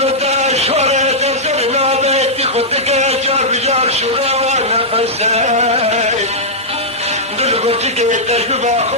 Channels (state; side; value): normal; both; correlation -0.08